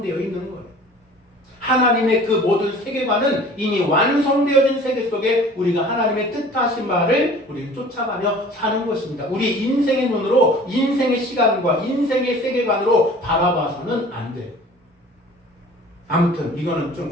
있는 거예요. 하나님의 그 모든 세계관은 이미 완성되어진 세계 속에 우리가 하나님의 뜻하신 말을 우리는 쫓아가며 사는 것입니다. 우리 인생의 눈으로 인생의 시간과 인생의 세계관으로 바라봐서는 안 돼요. 아무튼 이거는 좀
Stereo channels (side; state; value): both; normal; correlation 0.46